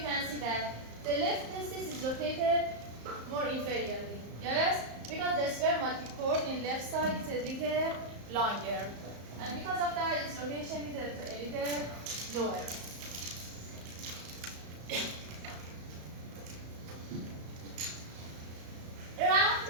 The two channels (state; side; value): late; left; 34 ms